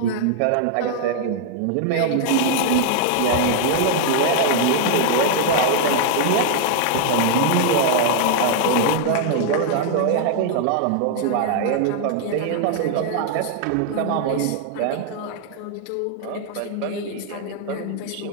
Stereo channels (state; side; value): different; both; correlation -0.01